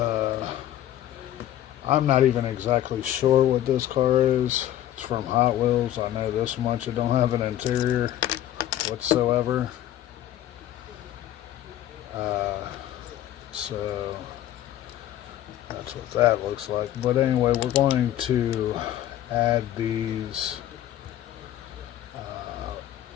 I'm not even exactly sure what this car is. It's from Hot Wheels. I know this much. It don't have an interior whatsoever. So that's what that looks like. But anyway, we're going to add these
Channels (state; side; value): quieter; right; 12.4 dB